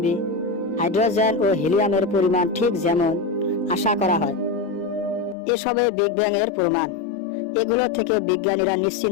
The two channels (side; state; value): right; drops out; at 5.4 s